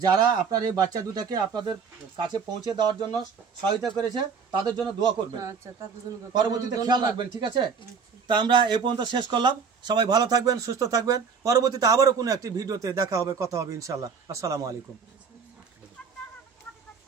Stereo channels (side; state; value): left; quieter; 5.9 dB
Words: যারা আপনার এই বাচ্চা দুটাকে আপনাদের কাছে পৌঁছে দেওয়ার জন্য সহায়তা করেছে তাদের জন্য দোয়া করবেন। পরবর্তীতে খেয়াল রাখবেন, ঠিক আছে? তা আমরা এই পর্যন্ত শেষ করলাম। সবাই ভালো থাকবেন, সুস্থ থাকবেন। পরবর্তীতে আবারও কোনো একটি ভিডিওতে দেখা হবে, কথা হবে ইনশাল্লাহ। আসসালামু আলাইকুম।